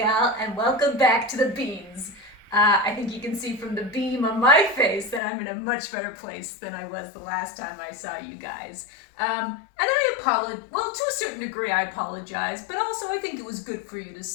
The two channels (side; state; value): right; drops out; at 5.2 s